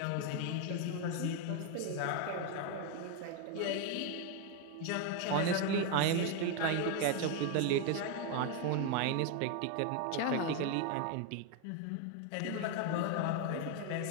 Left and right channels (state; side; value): different; both; correlation 0.01